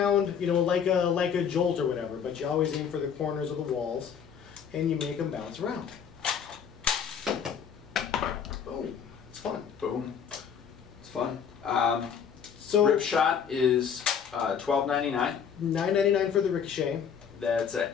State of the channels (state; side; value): quieter; right; 7.5 dB